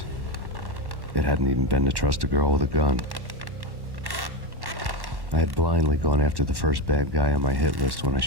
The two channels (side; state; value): left; late; 1.1 ms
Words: It hadn't even been to trust a girl with a gun. I had blindly gone after the first bad guy on my hit list when I